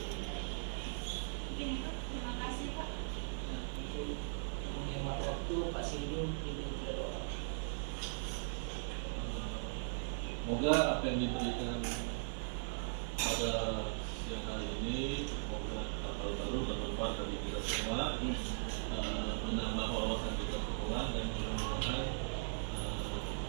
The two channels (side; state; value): left; silent; 52 dB below the other